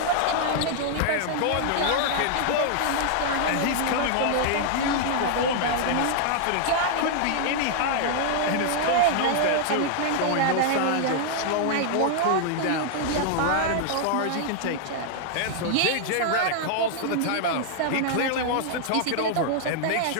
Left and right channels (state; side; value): different; both; correlation -0.01